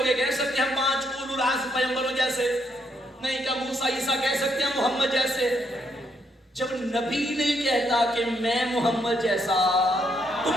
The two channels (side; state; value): both; normal; correlation 0.75